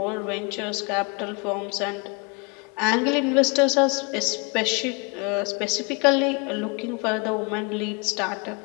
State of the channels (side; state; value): right; quieter; 30.9 dB